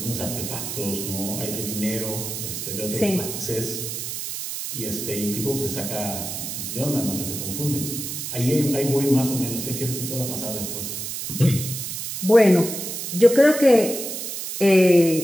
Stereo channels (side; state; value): right; noise; hiss, 5 dB below the sound